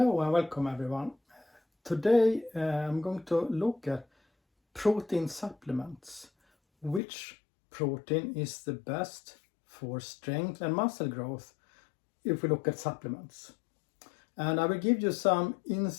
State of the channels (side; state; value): right; drops out; at 7.0 s